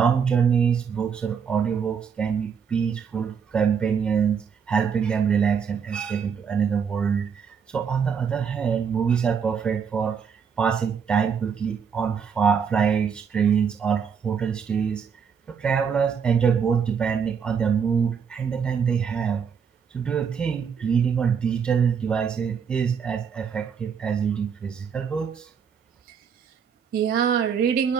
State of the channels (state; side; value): quieter; left; 6.8 dB